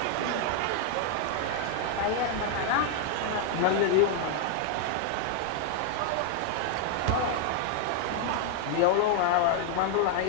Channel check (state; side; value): different; both; correlation 0.00